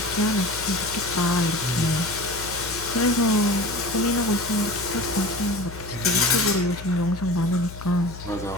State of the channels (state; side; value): noise; left; hum, 12 dB below the sound